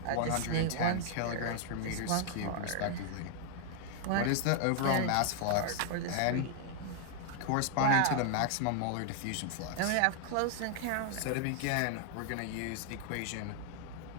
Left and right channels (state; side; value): different; both; correlation 0.00